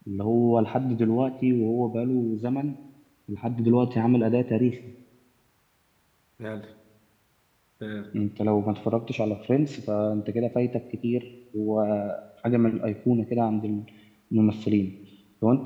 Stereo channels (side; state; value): both; identical; correlation 1.00